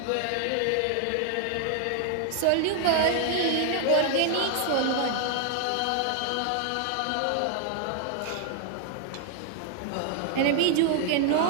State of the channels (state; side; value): different; both; correlation 0.00